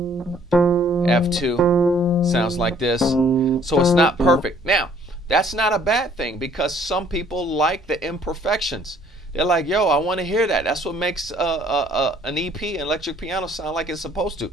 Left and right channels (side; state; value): both; normal; correlation 0.59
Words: Sounds like this. So it's not perfect. Now that's not a bad thing, because some people like the imperfections. They're like, yo, I want to hear that. That's what makes an EP, an electric piano, sound like it's supposed to.